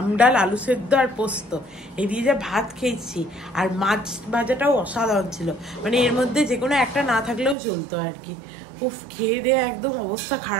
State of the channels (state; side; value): drops out; left; at 7.6 s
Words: ডাল, আলু সেদ্ধ আর পোস্ত এই দিয়ে যা ভাত খেয়েছি, আর মাছ ভাজাটাও অসাধারণ ছিল, মানে এর মধ্যে যে কোনো একটা না থাকলেও চলতো আর কি। উফ, খেয়ে দিয়ে একদম অবস্থা